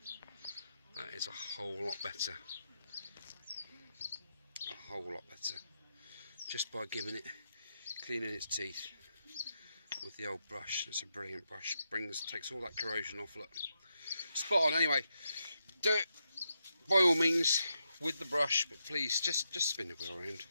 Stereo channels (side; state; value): both; inverted; correlation -0.84